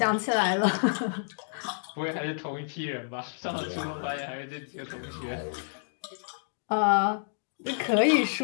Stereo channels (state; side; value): silent; right; digital silence